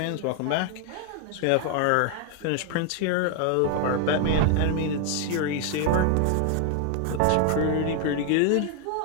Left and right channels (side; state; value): both; different; correlation 0.00